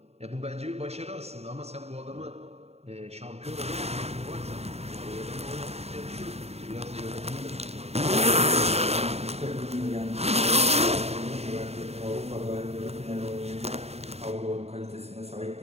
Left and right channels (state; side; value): late; left; 0.30 ms